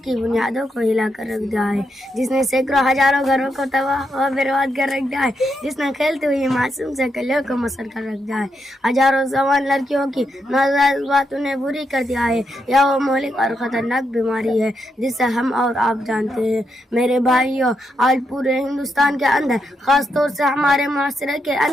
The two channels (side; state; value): both; normal; correlation 0.82